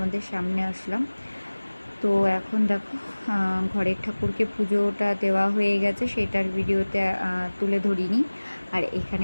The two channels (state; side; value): inverted; both; correlation -1.00